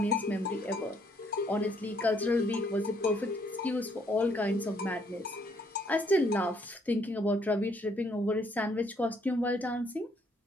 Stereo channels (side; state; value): both; normal; correlation 0.68